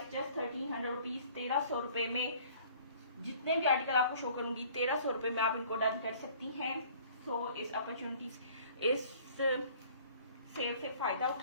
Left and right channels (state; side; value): inverted; both; correlation -0.53